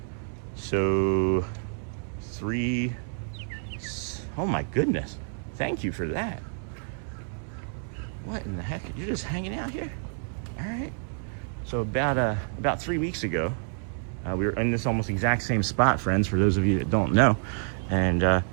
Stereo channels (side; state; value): left; silent; 59 dB below the other